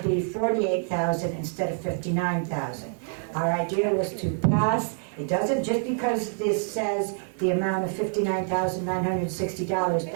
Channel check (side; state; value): left; silent; 61 dB below the other